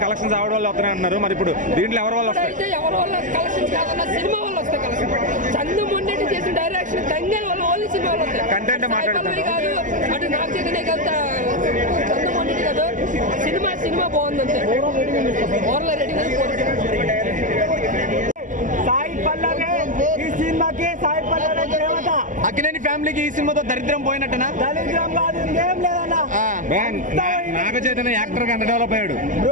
కలెక్షన్స్ ఆవిడ వల్ల వస్తున్నాయి అంటున్నారు. మరి ఇప్పుడు దీంట్లో ఎవరి వల్ల వస్తాయి? అయితే ఎవరి వల్ల కలెక్షన్స్ కాదన్న సినిమా వల్ల వస్తాయి కలెక్షన్. చందు మొండెట్టి చేసిన డైరెక్షన్ తంగేల వల్ల ఓన్లీ సినిమా వల్ల వస్తాయి. కంటెంట్ మాట్లాడుతున్నారు కాదు, అటు నాగ చైతన్య కాదు, చందు మొండెట్టి కాదు, సినిమా బాగుంది అంతే. ఓవర్లో రేటింగ్ సాయి పల్లవి ఈ సినిమాకి, సాయి పల్లవి దేవత. అక్కినేని ఫ్యామిలీకి ఈ సినిమాతో దరిద్రం పోయినట్టనా? దరిద్రం కాదు, ఇంకేం లేదన్నా. నాగ చైతన్య యాక్టర్ గా ఎంత డెవలప్ అయ్యాడు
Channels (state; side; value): late; left; 0.37 ms